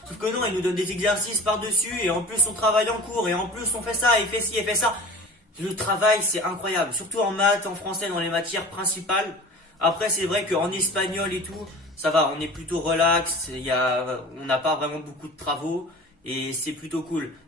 Sauf que non, il nous donne des exercices par-dessus, et en plus on travaille en cours, et en plus on fait ça, et fait ci, et fait ça. Le travail, c'est incroyable, surtout en maths, en français, dans les matières principales. Après, c'est vrai qu'en espagnol et tout, ça va, on est plutôt relax, on n'a pas vraiment beaucoup de travaux, et c'est plutôt cool.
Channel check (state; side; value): normal; both; correlation 0.39